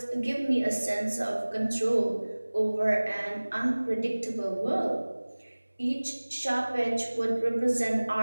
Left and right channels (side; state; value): both; inverted; correlation -1.00